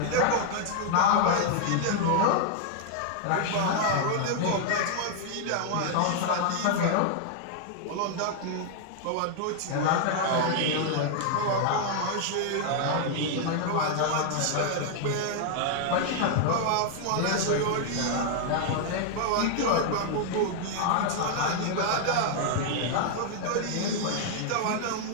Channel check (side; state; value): both; different; correlation 0.00